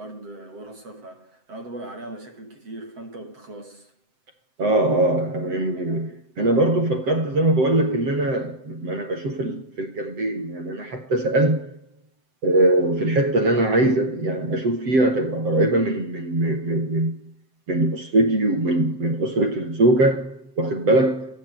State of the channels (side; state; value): left; late; 7.8 ms